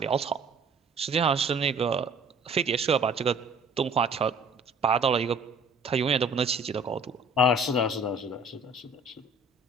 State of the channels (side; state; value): left; quieter; 3.0 dB